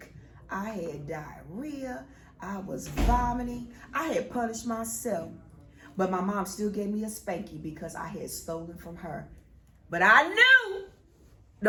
I had diarrhea. I was vomiting. I had punished myself. But my mom still gave me a spanky because I had stolen from her But I knew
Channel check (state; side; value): identical; both; correlation 1.00